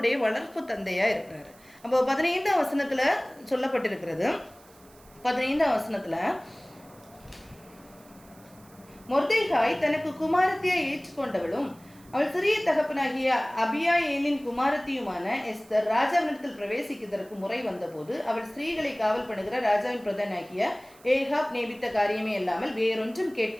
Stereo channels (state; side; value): noise; right; hiss, 26 dB below the sound